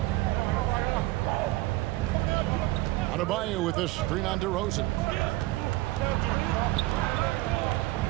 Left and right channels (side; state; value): left; quieter; 19.1 dB